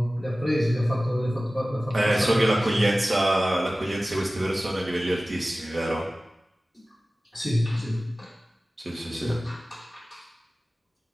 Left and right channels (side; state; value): both; normal; correlation 0.97